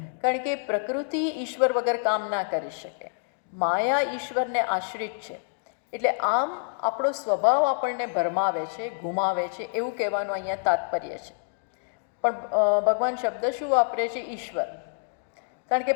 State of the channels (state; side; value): silent; right; digital silence